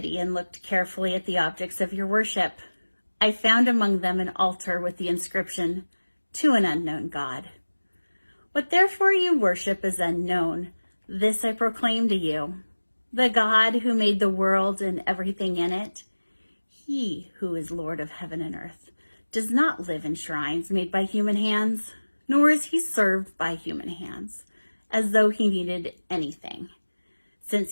and looked carefully at the objects of your worship, I found among them an altar with the inscription, To an unknown God. What therefore you worship is unknown. This I proclaim to you. The God who made the world and everything in it, he who is Lord of heaven and earth, does not live in shrines made by human hands, nor is he served by human hands, as though he needed anything, since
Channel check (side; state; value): both; inverted; correlation -1.00